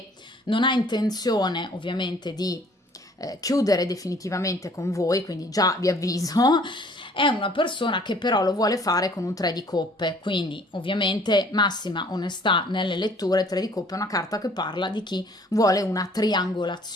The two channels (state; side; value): normal; both; correlation 0.56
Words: non ha intenzione ovviamente di chiudere definitivamente con voi, quindi già vi avviso. È una persona che però lo vuole fare con un 3 di coppe, quindi ovviamente massima onestà nelle letture. 3 di coppe è una carta che parla di chi vuole una